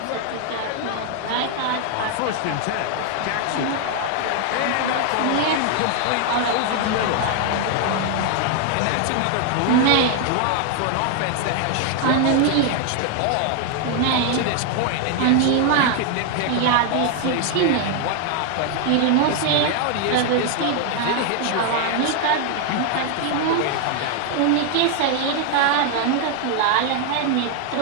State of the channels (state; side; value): different; both; correlation 0.00